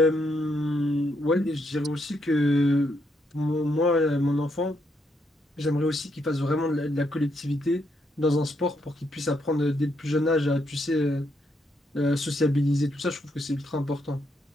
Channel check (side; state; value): both; normal; correlation 0.77